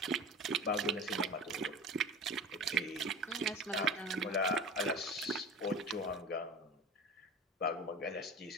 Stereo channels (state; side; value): normal; both; correlation 0.34